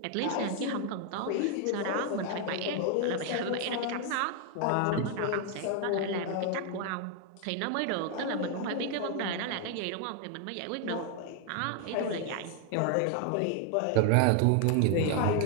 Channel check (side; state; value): both; different; correlation 0.00